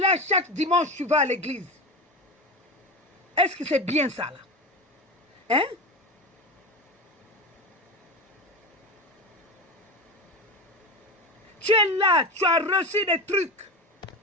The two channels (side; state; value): both; normal; correlation 0.24